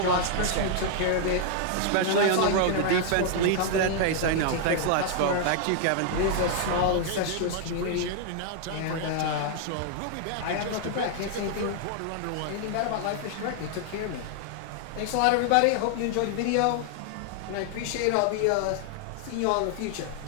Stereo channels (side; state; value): both; different; correlation 0.00